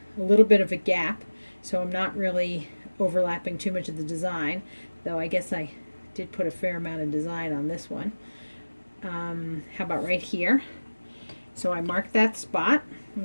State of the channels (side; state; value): both; inverted; correlation -1.00